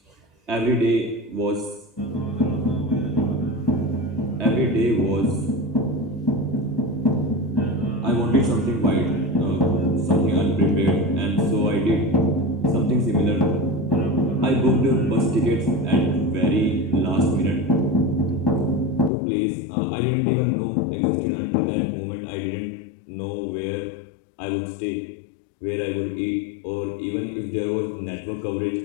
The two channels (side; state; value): right; drops out; at 19.1 s